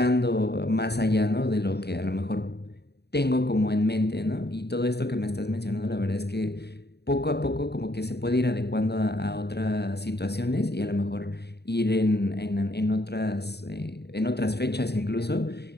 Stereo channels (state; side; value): late; right; 0.48 ms